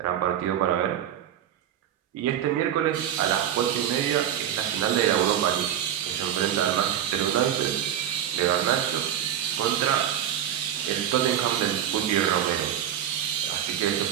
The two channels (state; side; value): quieter; left; 10.5 dB